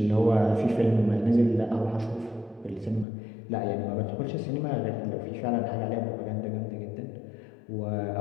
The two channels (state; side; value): drops out; right; at 3.1 s